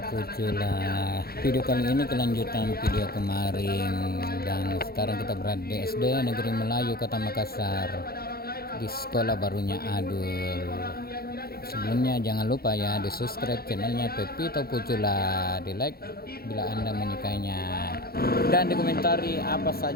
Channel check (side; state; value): right; late; 0.45 ms